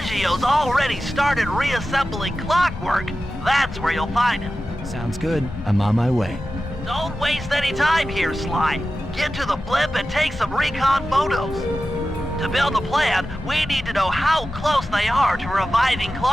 already started reassembling clockwork, that's where you'll find him. Sounds good. I'm on my way. Don't waste any time here, Sly. Get to the blimp and take some recon photos. To build a plan, we need to know how close they are to reviving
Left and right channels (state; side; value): normal; both; correlation 0.94